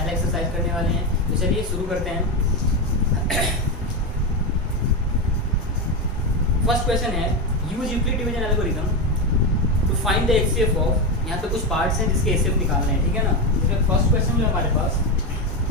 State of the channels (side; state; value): both; normal; correlation 0.13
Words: एक्सरसाइज करने वाले हैं। तो चलिए शुरू करते हैं। फर्स्ट क्वेश्चन है, use Euclid division algorithm to find the HCF of. यहाँ पे कुछ पार्ट्स हैं जिसके एचसीएफ निकालने हैं, ठीक है ना। इसमें फर्स्ट क्वेश्चन जो हमारे पास